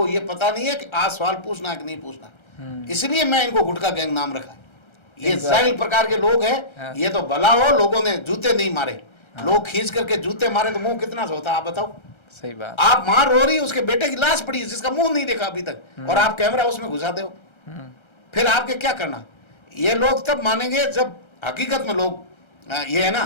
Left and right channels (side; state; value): right; late; 1.3 ms